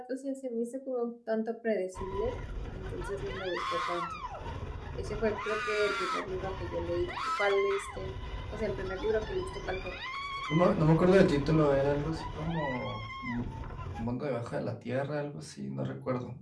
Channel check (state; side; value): identical; both; correlation 1.00